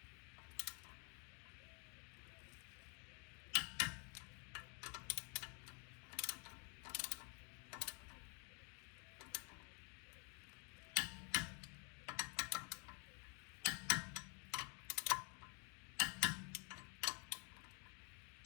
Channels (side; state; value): right; quieter; 36.9 dB